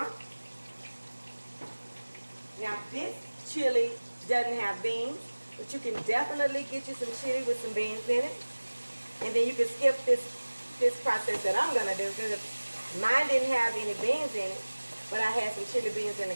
Now this chili doesn't have beans, but you can definitely get you some chili with some beans in it. And then you can skip this process that I'm gonna do, because mine didn't have any beans in it, but I had some chili beans in the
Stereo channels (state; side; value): inverted; both; correlation -1.00